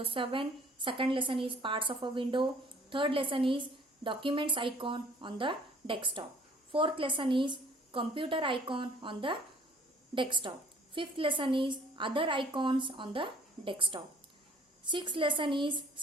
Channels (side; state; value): both; normal; correlation 0.54